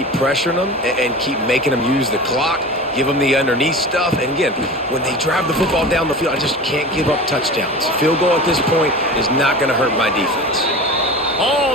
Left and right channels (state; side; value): normal; both; correlation 0.33